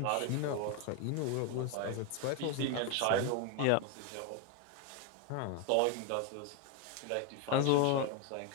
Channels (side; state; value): both; different; correlation 0.01